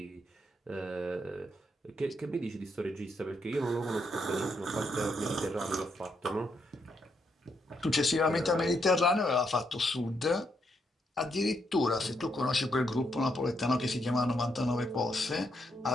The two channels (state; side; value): normal; both; correlation 0.78